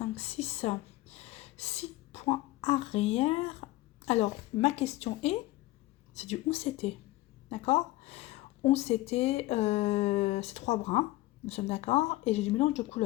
6. 6 points arrière. Alors, ma question est, c'est du 11 CT. D'accord? 11 CT, c'est 3 brins. Nous sommes d'accord. Et j'ai du mélange de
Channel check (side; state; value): right; quieter; 18.1 dB